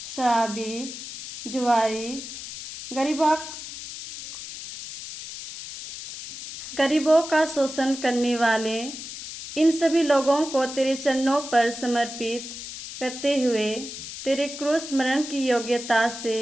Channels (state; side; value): noise; left; hiss, 10 dB below the sound